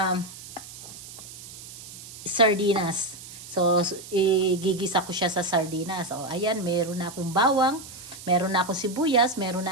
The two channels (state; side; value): noise; right; hiss, 14 dB below the sound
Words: sardinas. So, igigisa ko siya sa sardinas. So, ayan, meron na akong bawang, meron na akong sibuyas, meron